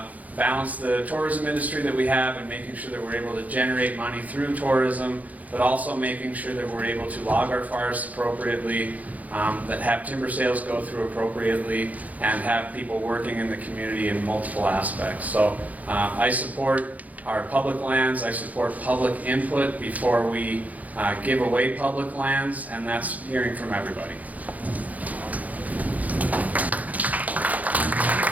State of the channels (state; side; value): late; left; 0.076 ms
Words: balance the tourism industry that we have and making sure that we're able to generate money through tourism, but also making sure that we're able to log our forests appropriately, that have timber sales go through appropriately, and have people working in the community in multiple aspects. So I support our public lands, I support public input before we give away public lands, and that's hearing from everybody.